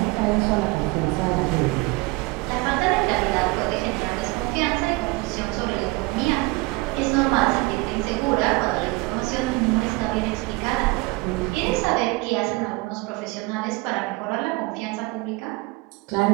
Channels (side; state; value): left; quieter; 23.5 dB